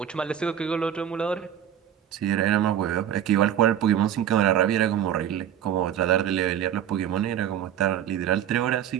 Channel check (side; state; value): left; quieter; 9.9 dB